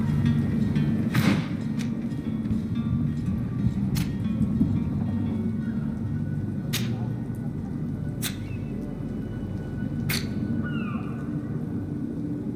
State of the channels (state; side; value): identical; both; correlation 1.00